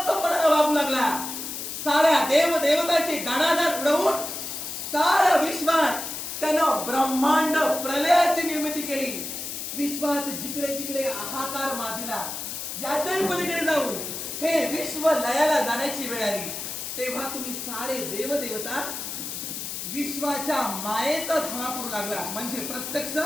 वागू लागला. साऱ्या देव देवताची दाणादाण उडवून साऱ्या विश्वात त्यानं ब्रह्मांड प्रलयाची निर्मिती केली. विश्वात जिकडे तिकडे हाहाकार माजला. याच्याही पलीकडे जाऊन हे विश्व लयाला जाण्याची वेळ आली. तेव्हा तुम्ही सारे देव देवता विश्वाच्या मायेचा धावा करू लागला, म्हणजे प्रत्यक्ष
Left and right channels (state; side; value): noise; left; hiss, 6 dB below the sound